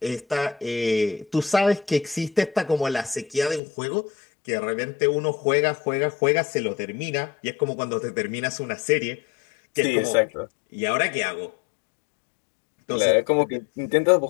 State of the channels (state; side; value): drops out; right; at 3.6 s